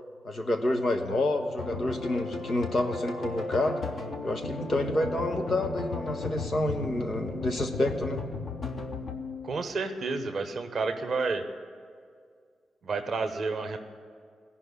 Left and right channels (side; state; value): both; normal; correlation 0.81